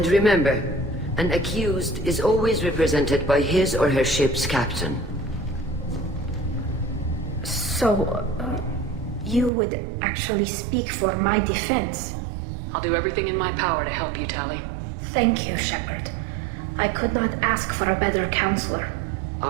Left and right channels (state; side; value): drops out; left; at 9.5 s